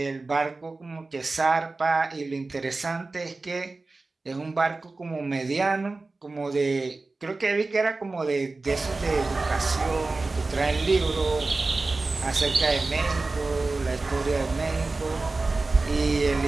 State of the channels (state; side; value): quieter; left; 3.5 dB